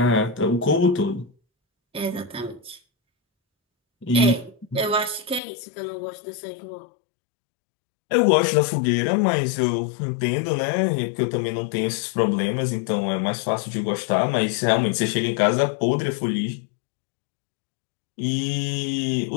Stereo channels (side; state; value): right; drops out; at 5.4 s